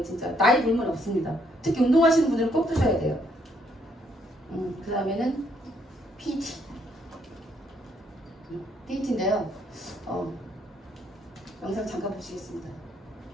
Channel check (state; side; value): normal; both; correlation 0.71